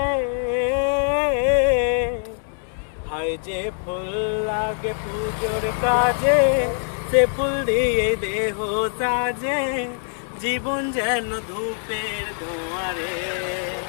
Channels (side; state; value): right; silent; 63 dB below the other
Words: হাই যে ফুল লাগে পুজোর কাজে, সে ফুল দিয়ে দেহ সাজে, জীবন যেন ধূপের ধোঁয়ারে।